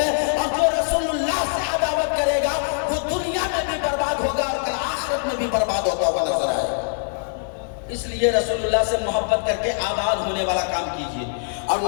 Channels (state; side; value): silent; right; digital silence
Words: لیے رسول اللہ سے محبت کر کے آباد ہونے والا کام کیجئے، اور